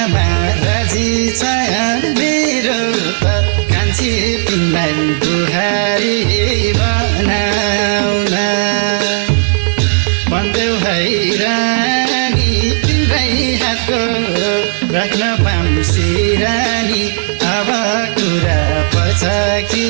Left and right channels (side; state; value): left; silent; digital silence